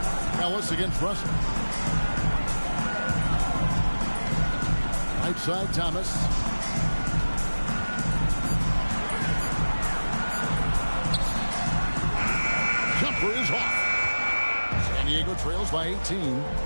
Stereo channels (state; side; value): inverted; both; correlation -1.00